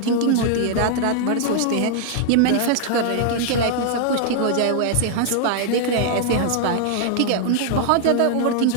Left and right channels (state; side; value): different; both; correlation -0.01